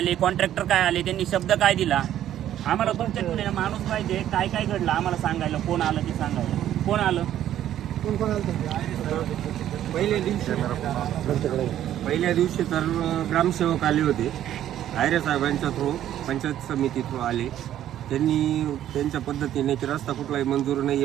कॉन्ट्रॅक्टर काय आले, त्यांनी शब्द काय दिला, आम्हाला तुमच्याकडे माणूस पाहिजे. काय घडलं आम्हाला सांगायला, कोण आलं ते सांगायला. कोण आलं? पहिल्या दिवशी तर ग्रामसेवक आले होते. आयरे साहेबांच्या थ्रू, पंचायत समिती थ्रू आले. त्यांनी त्यांच्या पद्धतीने की रस्ता कुठलाही मंजूर नाही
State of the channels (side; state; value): left; quieter; 11.7 dB